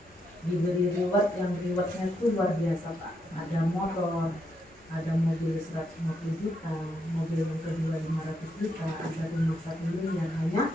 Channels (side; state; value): both; normal; correlation 0.79